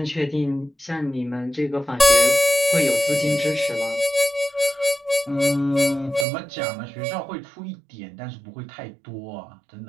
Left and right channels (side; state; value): left; drops out; at 6.2 s